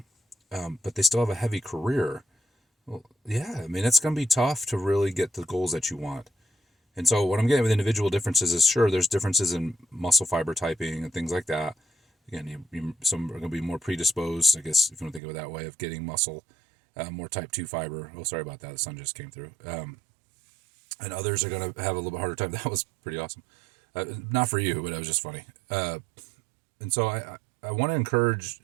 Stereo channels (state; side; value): drops out; left; at 15.2 s